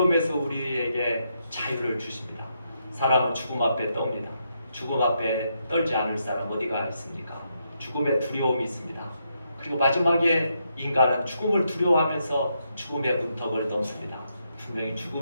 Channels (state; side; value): inverted; both; correlation -0.80